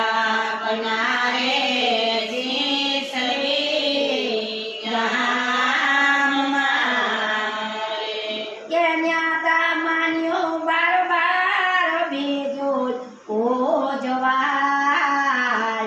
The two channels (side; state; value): both; identical; correlation 1.00